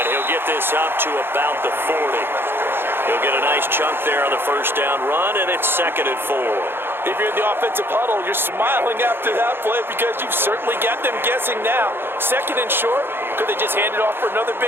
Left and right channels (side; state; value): left; late; 0.10 ms